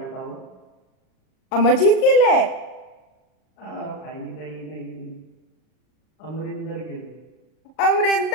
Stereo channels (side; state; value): right; late; 38 ms